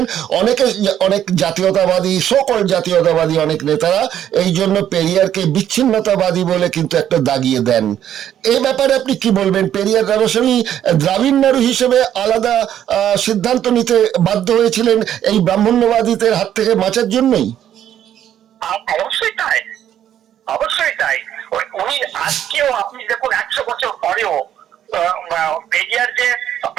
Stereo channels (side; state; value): left; quieter; 10.6 dB